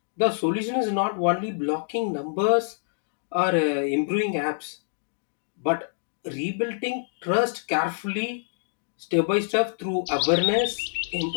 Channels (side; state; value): right; silent; digital silence